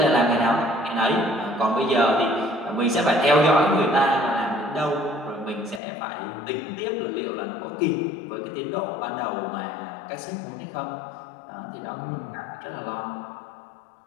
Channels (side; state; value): right; drops out; at 5.8 s